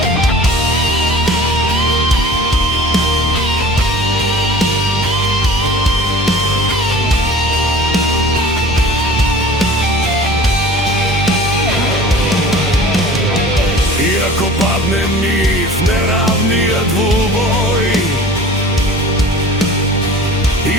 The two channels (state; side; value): normal; both; correlation 0.43